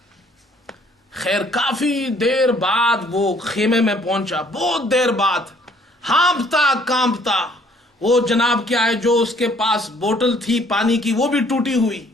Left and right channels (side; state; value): both; normal; correlation 0.61